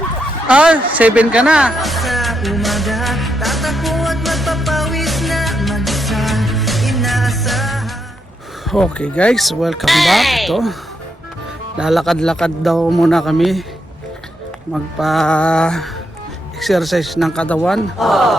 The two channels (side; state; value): both; normal; correlation 0.81